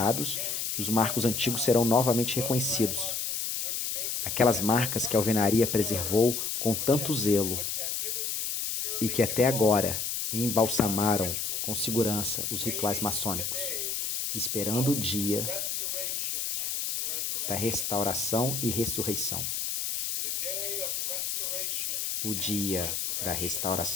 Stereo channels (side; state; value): left; noise; hiss, 2 dB below the sound